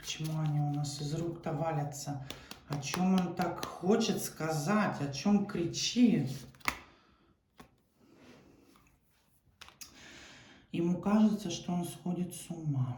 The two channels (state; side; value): identical; both; correlation 1.00